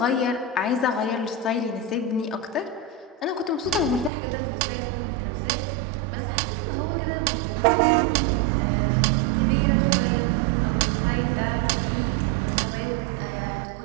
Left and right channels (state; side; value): drops out; left; at 4.1 s